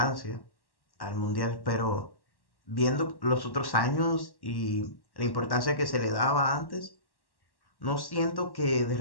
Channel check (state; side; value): late; right; 1.1 ms